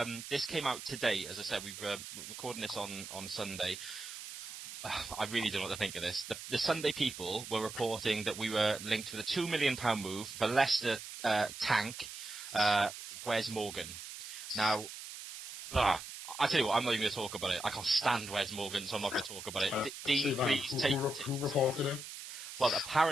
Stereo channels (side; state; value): right; noise; hiss, 10 dB below the sound